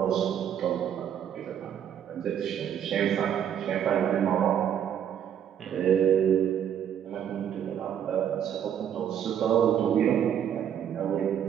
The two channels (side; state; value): left; quieter; 9.3 dB